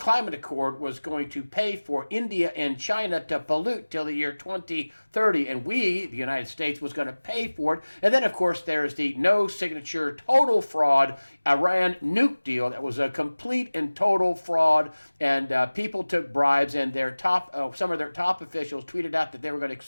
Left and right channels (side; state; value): both; inverted; correlation -1.00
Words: Accord was going to pay for India and China to pollute till the year 2030, and we, the United States, was going to pay for it. And then, of course, there's the no-signature, total fraud Iran nuke deal that was a complete and total fraud, and people took bribes, and some of their top officials tweeted out that they were going to